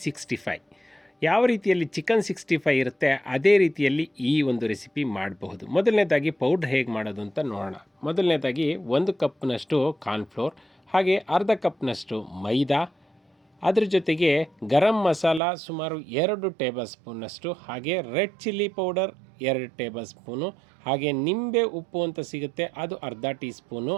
65. ಯಾವ ರೀತಿಯಲ್ಲಿ ಚಿಕನ್ 65 ಇರುತ್ತೆ ಅದೇ ರೀತಿಯಲ್ಲಿ ಈ ಒಂದು ರೆಸಿಪಿ ಮಾಡಬಹುದು. ಮೊದಲನೇದಾಗಿ ಪೌಡ್ರ್ ಹೇಗೆ ಮಾಡೋದು ಅಂತ ನೋಡೋಣ. ಮೊದಲನೇದಾಗಿ 1 ಕಪ್ನಷ್ಟು ಕಾರ್ನ್ಫ್ಲೋರ್, ಹಾಗೆ ಅರ್ಧ ಕಪ್ನಷ್ಟು ಮೈದಾ, ಅದ್ರ ಜೊತೆಗೆ ಗರಂ ಮಸಾಲ ಸುಮಾರು 2 ಟೇಬಲ್ ಸ್ಪೂನಷ್ಟು, ಹಾಗೆ red chilli powder 2 table spoon, ಹಾಗೆ ನಿಂಬೆ ಉಪ್ಪು ಅಂತ ಸಿಗುತ್ತೆ ಅದು ಅರ್ಧ ಟೀ ಸ್ಪೂನು,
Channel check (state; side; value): drops out; left; at 15.4 s